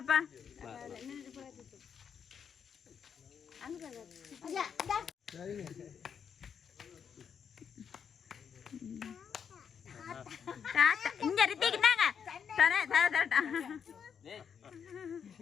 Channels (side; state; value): right; quieter; 7.3 dB